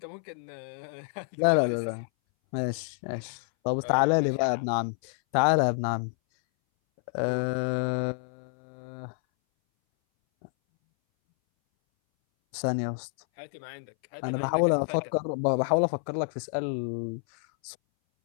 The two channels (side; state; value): right; silent; 59 dB below the other